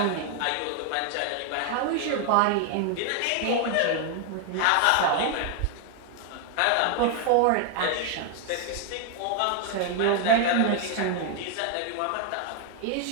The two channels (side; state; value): both; different; correlation 0.00